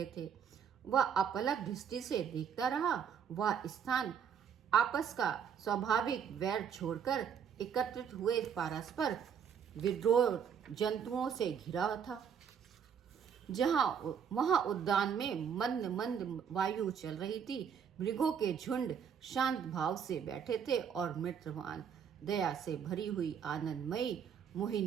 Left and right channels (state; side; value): quieter; left; 7.6 dB